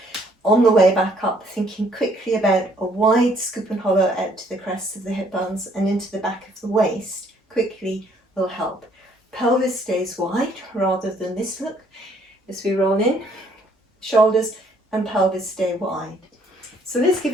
On the way back up, thinking quickly about a wide scoop and hollow out to the crests of the hip bones and into the back of the waist, quickly will help. Pelvis stays wide rather than this look as we roll in. Shoulders and pelvis stay wide. So let's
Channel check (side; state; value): both; normal; correlation 0.64